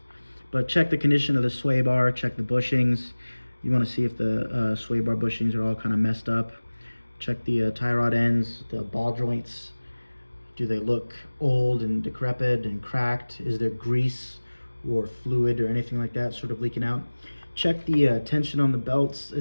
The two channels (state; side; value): inverted; both; correlation -1.00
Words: But check the condition of the sway bar, check the bushings. You want to see if the sway bar bushings are all kind of messed up. Check the tie rod ends, the ball joints. Do they look old and decrepit and cracked? Is there grease or fluid or anything like that sort of leaking out? Check the tension on the belts